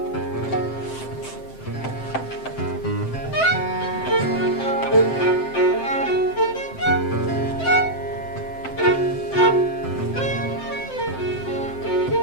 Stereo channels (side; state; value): right; late; 7.7 ms